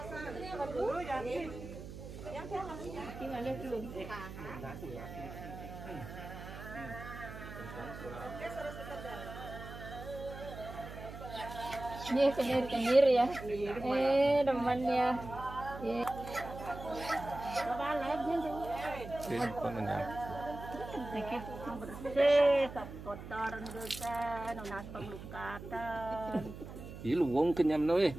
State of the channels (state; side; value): noise; right; hum, 11 dB below the sound